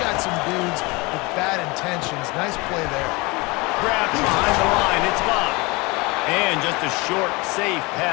got some dudes with bad intentions. Nice play there. Grab behind the line. It's Love. And just a short, safe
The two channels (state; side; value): quieter; right; 25.3 dB